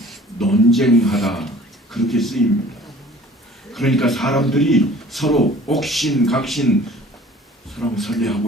논쟁하다 그렇게 쓰입니다. 그러니까 사람들이 서로 옥신각신 서로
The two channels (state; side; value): normal; both; correlation 0.49